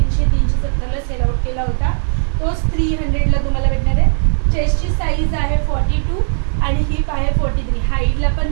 370ला सेल आउट केला होता. तोच 300ला तुम्हाला भेटणार आहे. चेस्टची साईज आहे 42 आणि हिप आहे 43. हाईटला पण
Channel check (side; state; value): left; silent; digital silence